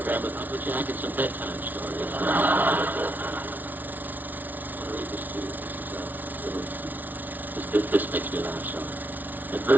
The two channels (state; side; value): late; left; 0.082 ms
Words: with Uncle Jack and some bedtime stories. I'll read this to you. This makes me laugh, so.